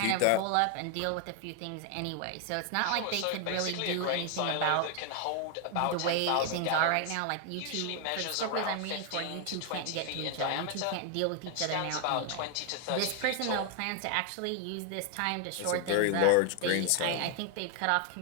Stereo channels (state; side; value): different; both; correlation 0.00